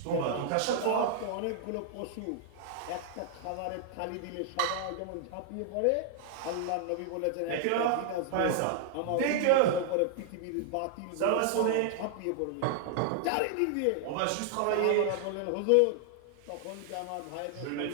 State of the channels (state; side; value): different; both; correlation -0.01